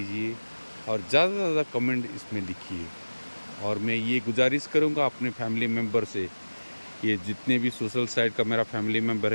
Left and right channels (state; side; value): inverted; both; correlation -1.00